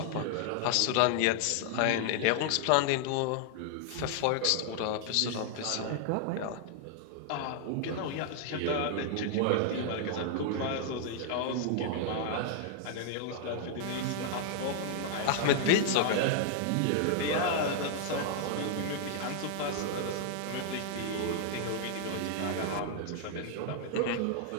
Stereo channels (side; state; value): both; different; correlation 0.00